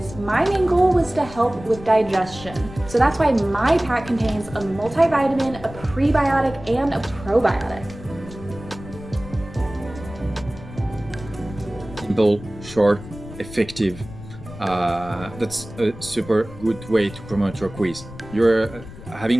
my main goal was to help with digestion. So that's why my pack contains a multivitamin, a prebiotic, and a probiotic. Simple, short, effective. That's a super good way to promote your quiz. You're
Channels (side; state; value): left; noise; rumble, 15 dB below the sound